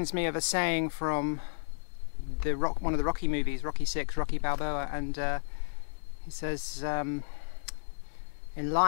me of a saying from one of the Rocky movies, Rocky VI, Rocky Balboa, and he says, in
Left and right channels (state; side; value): silent; right; digital silence